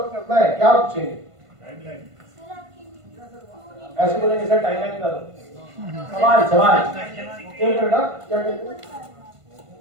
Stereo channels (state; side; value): late; left; 1.5 ms